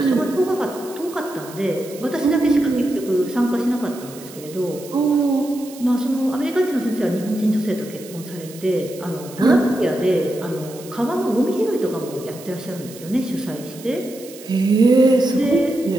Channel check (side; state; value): right; noise; hiss, 18 dB below the sound